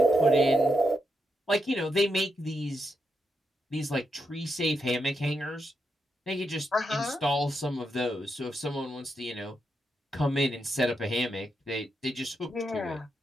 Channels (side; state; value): both; normal; correlation 0.83